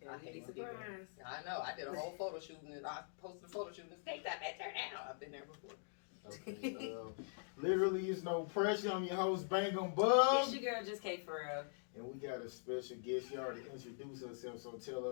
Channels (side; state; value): right; silent; digital silence